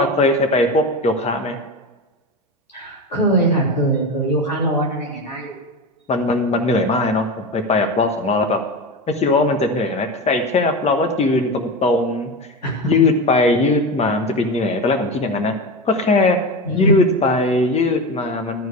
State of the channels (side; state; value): both; normal; correlation 0.22